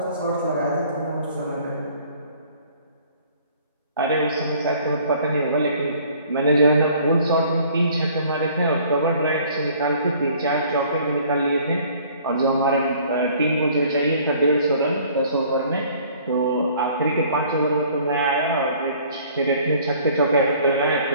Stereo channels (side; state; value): both; inverted; correlation -0.55